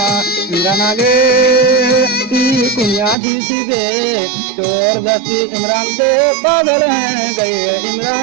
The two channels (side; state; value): left; drops out; at 3.2 s